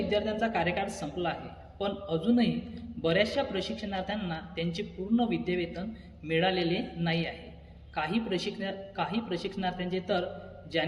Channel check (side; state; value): both; identical; correlation 1.00